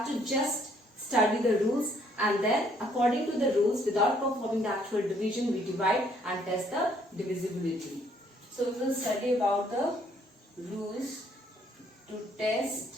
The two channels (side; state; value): both; normal; correlation 0.65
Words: to just study the rules, and then according to the rules, without performing the actual division, we divide and test the divisibility. So we will study about the rules to